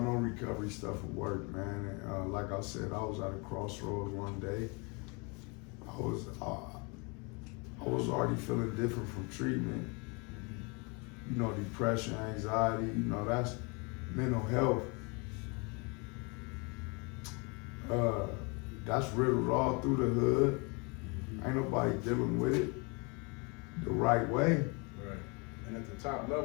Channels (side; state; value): right; quieter; 31.2 dB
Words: no recovery stuff would work, man. And, like I said, I was at a crossroads one day. I was already feeling different from treatment. You know, depression, anxiety. You know, that's mental health. That's riddled all through the hood. Ain't nobody dealing with it the right way. right. And at the top